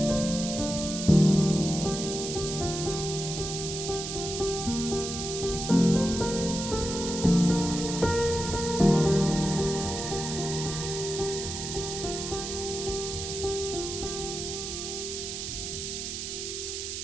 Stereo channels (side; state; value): right; noise; hiss, 5 dB below the sound